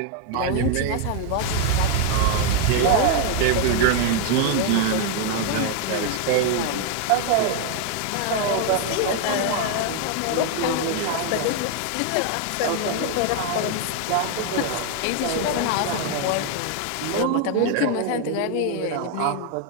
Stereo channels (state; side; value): different; both; correlation 0.01